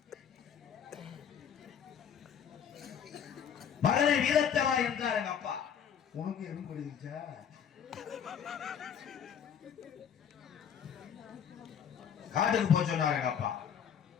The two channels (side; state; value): right; quieter; 8.1 dB